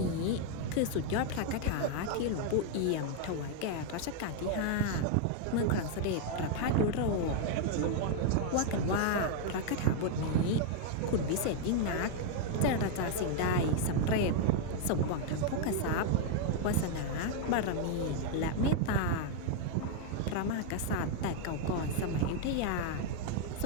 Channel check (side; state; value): both; different; correlation 0.00